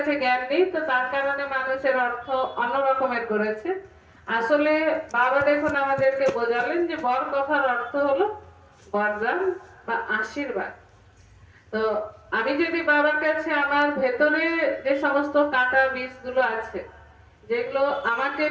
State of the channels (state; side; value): identical; both; correlation 1.00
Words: জ্ঞান নেই, তো তার কারণে মানুষের অর্থ অন্য রকমের করেছে। আসলে বাবা দেখুন আমাদেরকে বোঝালেন যে বর কথার অর্থ হলো বরদান বা আশীর্বাদ। তো আমি যদি বাবার কাছে আমার ভেতরে যে সমস্ত কাঁটা বীজগুলো আছে, যেগুলো আমাকে